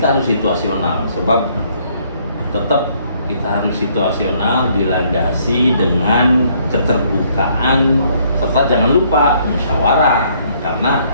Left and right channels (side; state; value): both; inverted; correlation -0.66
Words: harus situasional, sebab tetap kita harus situasional, dilandasi dengan keterbukaan, serta jangan lupa musyawarah. Karena